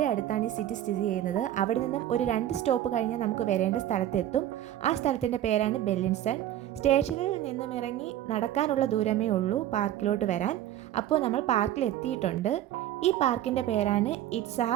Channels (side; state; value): left; quieter; 12.4 dB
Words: അടുത്താണ് ഈ സിറ്റി സ്ഥിതി ചെയ്യുന്നത്. അവിടെ നിന്നും ഒരു 2 സ്റ്റോപ്പ് കഴിഞ്ഞാൽ നമുക്ക് വരേണ്ട സ്ഥലത്തെത്തും. ആ സ്ഥലത്തിൻ്റെ പേരാണ് ബെല്ലിൻസൺ. സ്റ്റേഷനിൽ നിന്നും ഇറങ്ങി നടക്കാനുള്ള ദൂരമേ ഉള്ളൂ പാർക്കിലോട്ട് വരാൻ. അപ്പോൾ നമ്മൾ പാർക്കിൽ എത്തിയിട്ടുണ്ട്. ഈ പാർക്കിൻ്റെ പേരാണ്